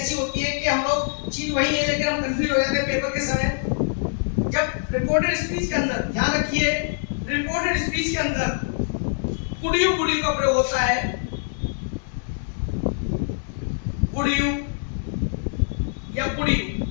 होती है कि हम लोग चीज वही है लेकिन हम कंफ्यूज हो जाते हैं पेपर के समय। जब रिपोर्टेड स्पीच के अंदर, ध्यान रखिए, रिपोर्टेड स्पीच के अंदर कुड यू का प्रयोग होता है। कुड यू या कुड यू,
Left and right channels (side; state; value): right; silent; digital silence